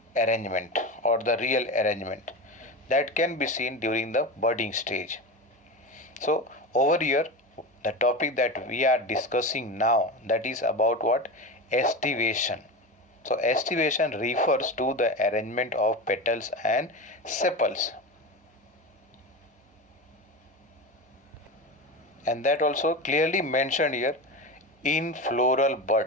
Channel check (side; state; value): both; normal; correlation 0.24